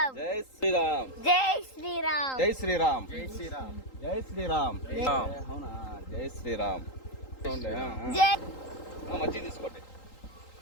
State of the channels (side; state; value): right; late; 3.8 ms